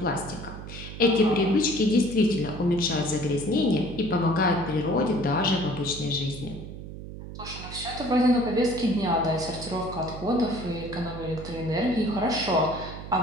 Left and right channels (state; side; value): noise; right; hum, 11 dB below the sound